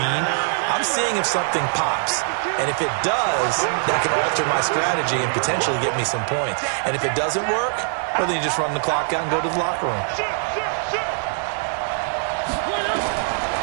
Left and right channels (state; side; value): silent; left; 62 dB below the other